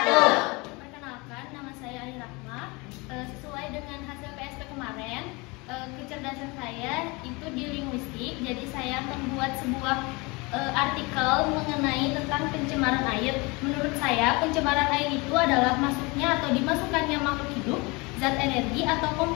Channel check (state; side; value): quieter; right; 26.3 dB